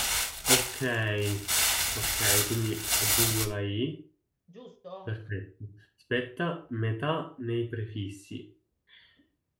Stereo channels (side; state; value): both; identical; correlation 1.00